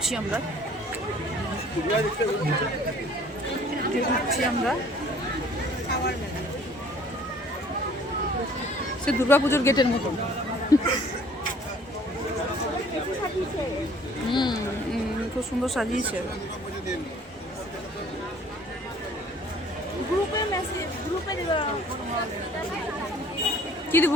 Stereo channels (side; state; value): both; normal; correlation 0.54